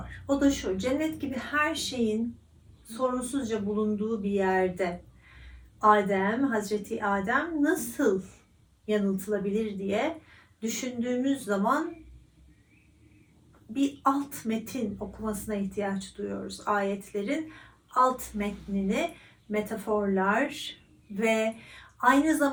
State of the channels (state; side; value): identical; both; correlation 1.00